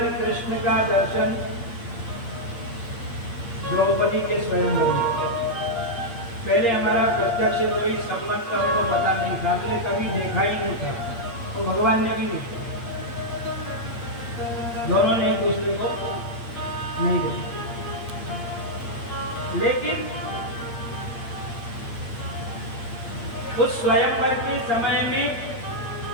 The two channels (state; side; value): late; right; 8.6 ms